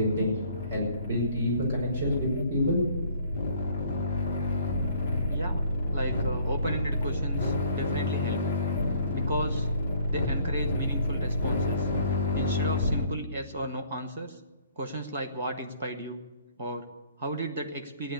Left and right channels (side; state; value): both; inverted; correlation -0.59